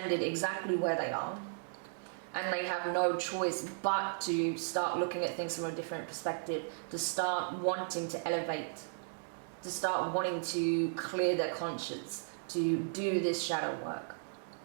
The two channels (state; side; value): silent; left; digital silence